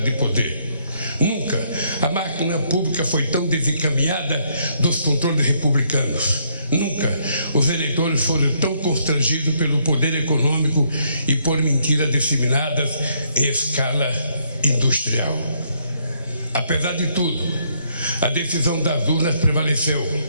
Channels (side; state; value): both; inverted; correlation -0.71